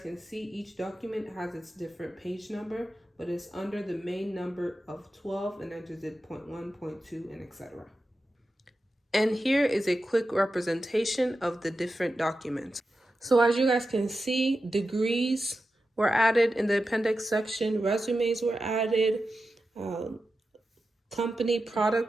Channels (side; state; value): both; normal; correlation 0.91